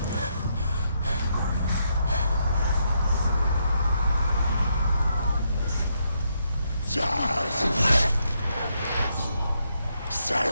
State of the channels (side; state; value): both; inverted; correlation -0.78